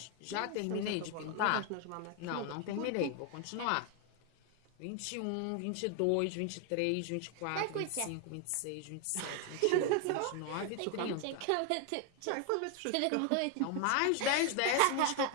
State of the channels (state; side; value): different; both; correlation 0.01